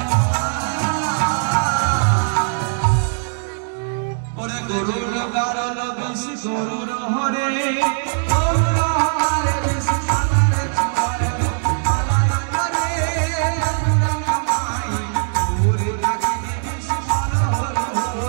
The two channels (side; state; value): left; silent; digital silence